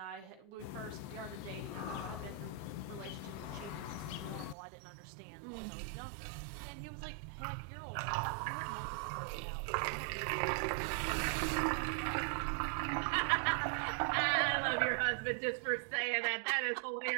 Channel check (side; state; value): left; drops out; at 4.5 s